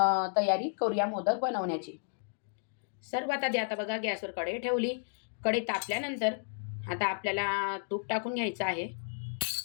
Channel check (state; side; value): silent; right; digital silence